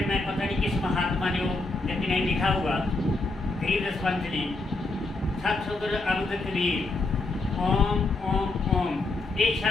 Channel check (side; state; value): right; quieter; 3.2 dB